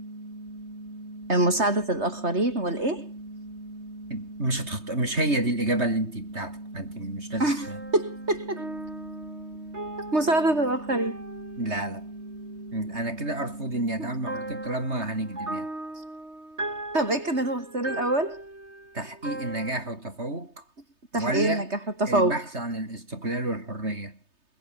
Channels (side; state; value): left; late; 3.3 ms